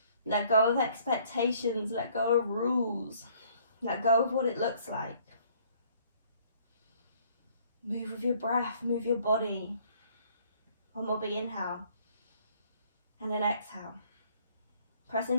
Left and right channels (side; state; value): both; inverted; correlation -0.61